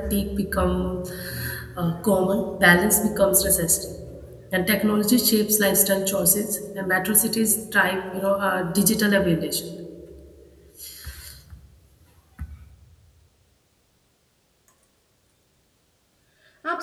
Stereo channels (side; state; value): both; identical; correlation 1.00